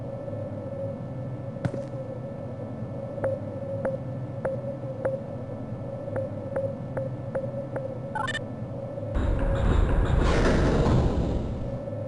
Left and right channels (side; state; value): both; identical; correlation 1.00